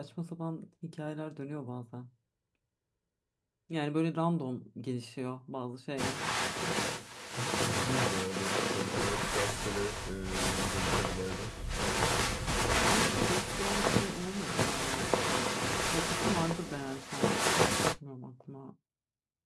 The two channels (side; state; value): both; identical; correlation 1.00